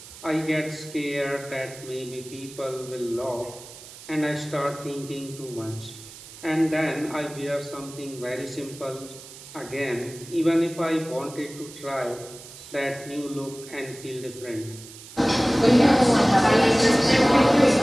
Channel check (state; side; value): noise; right; hiss, 17 dB below the sound